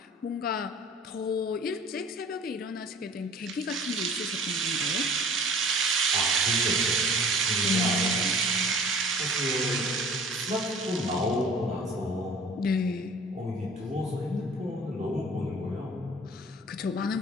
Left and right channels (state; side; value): normal; both; correlation 0.48